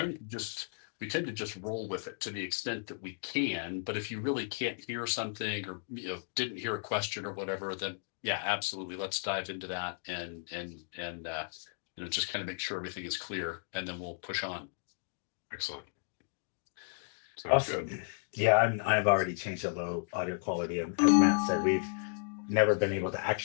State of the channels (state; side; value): silent; right; digital silence